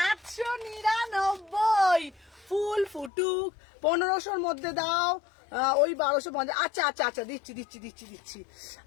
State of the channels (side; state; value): right; drops out; at 3.1 s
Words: ফুল ফুটুক 1500-র মধ্যে দাও, ওই 1250। আচ্ছা আচ্ছা আচ্ছা দিচ্ছি দিচ্ছি দিচ্ছি দিচ্ছি।